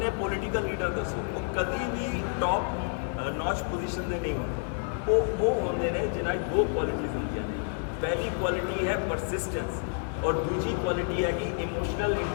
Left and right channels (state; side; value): silent; right; 56 dB below the other